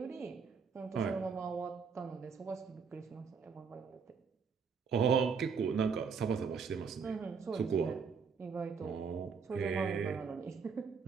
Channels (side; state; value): left; quieter; 5.8 dB